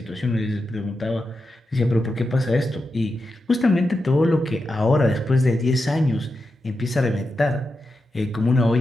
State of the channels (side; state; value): both; normal; correlation 0.89